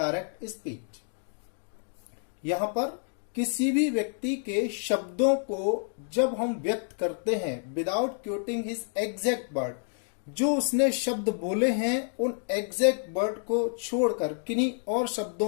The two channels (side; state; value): right; silent; digital silence